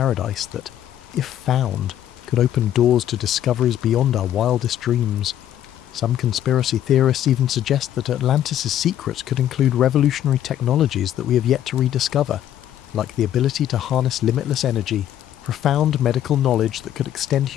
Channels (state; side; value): quieter; right; 11.3 dB